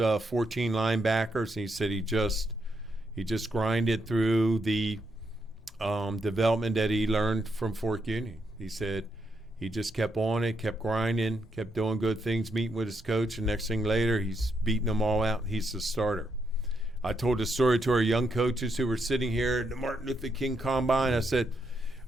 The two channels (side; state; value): both; normal; correlation 0.79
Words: 14 linebackers, and he said he just grinded through the development that he learned from Fort Union. He said he just kept on it, kept grinding, kept doing good things, meeting with his coach, and next thing later, he's beating them all out. He's the starter. I told the story to our young coaches who were sitting here at the Martin Luther King Combine. I said,